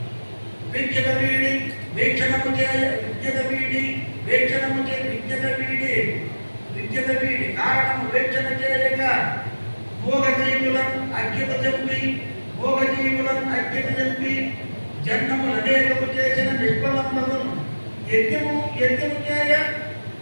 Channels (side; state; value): both; inverted; correlation -1.00